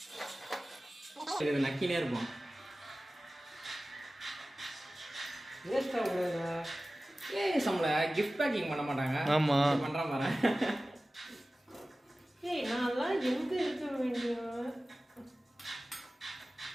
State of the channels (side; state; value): both; normal; correlation 0.96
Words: இது நக்கினே இருப்போம் வேஸ்ட்டாக கூடாதுங்க நம்மள கிஃப்ட் பேக்கிங் பண்ண மாட்டாங்க ஆமா பண்ற மாதிரி நான்லாம் எங்க இருக்க வேண்டிய